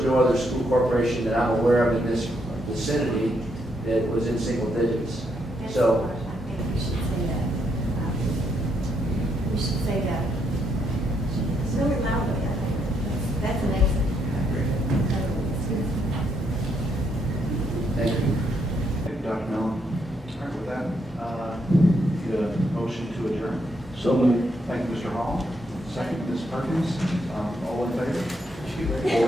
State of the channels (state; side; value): normal; both; correlation 0.76